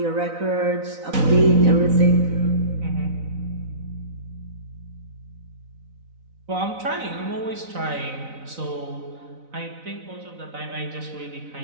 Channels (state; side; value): late; left; 4.0 ms